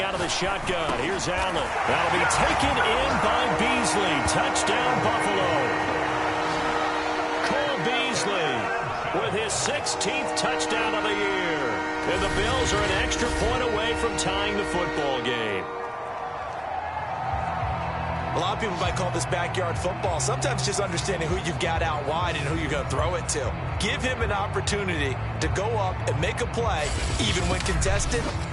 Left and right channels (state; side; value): identical; both; correlation 1.00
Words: out of the shotgun. Here's Allen. That'll be taken in by Beasley. Touchdown, Buffalo. Cole Beasley with his 16th touchdown of the year. And the Bills are an extra point away from tying the football game. A lot of people might call this backyard football. Sometimes just understanding who you've got out wide and who you're going to throw it to. Give him an opportunity to go up and make a play, even when contested.